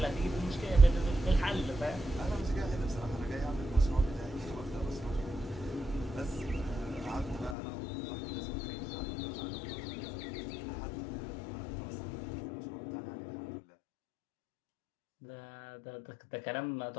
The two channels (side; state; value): right; drops out; at 7.6 s